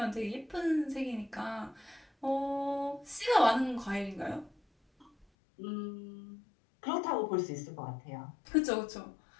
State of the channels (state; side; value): drops out; right; at 5.2 s